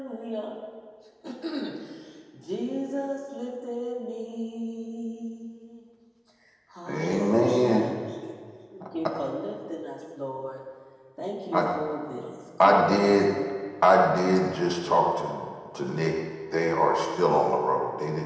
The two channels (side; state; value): both; identical; correlation 1.00